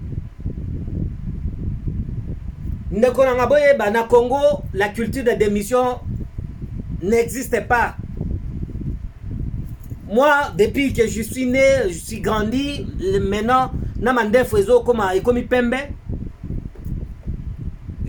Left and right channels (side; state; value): both; identical; correlation 1.00